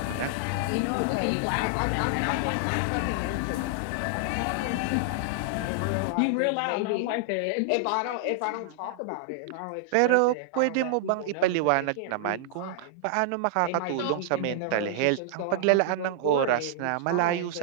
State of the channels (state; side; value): different; both; correlation -0.01